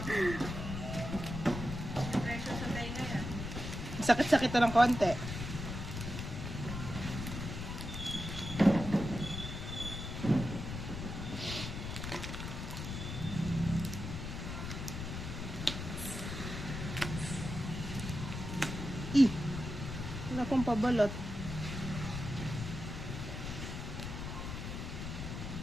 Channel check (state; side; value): noise; left; rumble, 6 dB below the sound